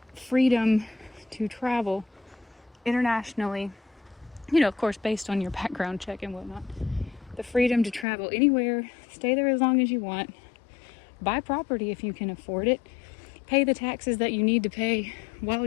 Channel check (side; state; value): right; drops out; at 8.1 s